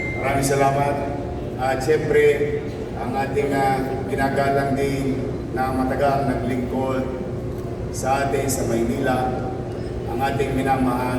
Maraming salamat. At siyempre, ang ating ginagalang din na matagal naglingkod sa atin sa Maynila, ang ating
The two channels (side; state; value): both; identical; correlation 1.00